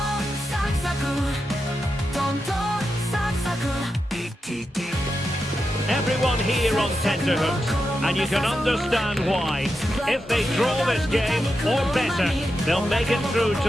サクサクトントンサクサク Everyone here on tenterhooks, and you can understand why. If they draw this game, or better, they'll make it through to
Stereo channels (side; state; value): both; normal; correlation 0.88